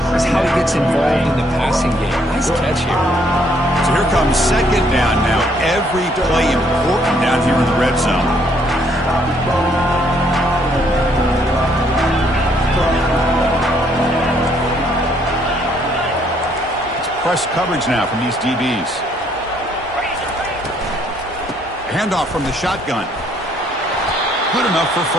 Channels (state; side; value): normal; both; correlation 0.67